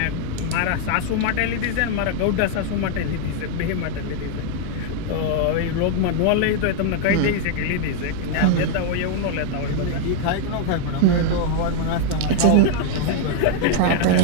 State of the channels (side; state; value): both; different; correlation 0.00